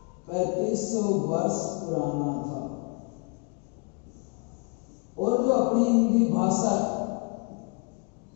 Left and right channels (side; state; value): right; quieter; 32.2 dB